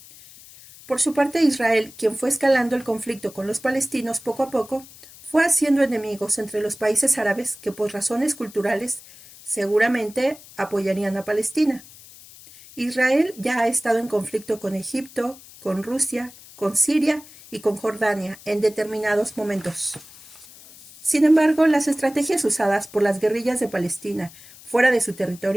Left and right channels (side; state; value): left; noise; hiss, 20 dB below the sound